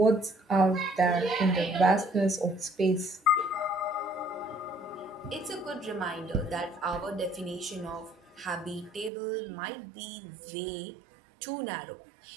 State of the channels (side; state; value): left; drops out; at 9.1 s